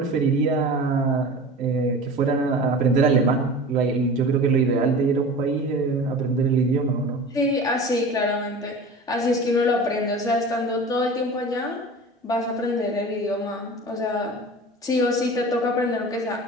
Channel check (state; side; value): normal; both; correlation 0.36